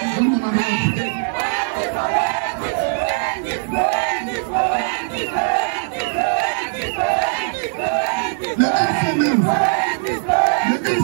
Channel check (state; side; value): silent; left; 66 dB below the other